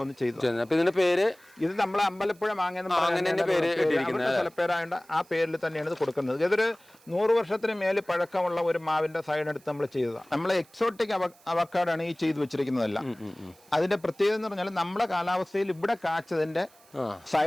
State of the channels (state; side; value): noise; right; hiss, 28 dB below the sound